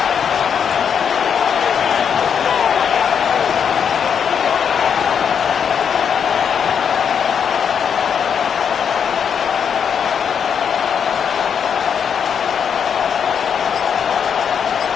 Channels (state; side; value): quieter; right; 7.4 dB